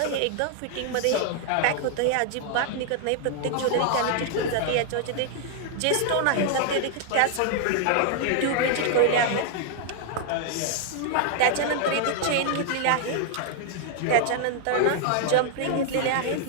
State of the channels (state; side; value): different; both; correlation 0.00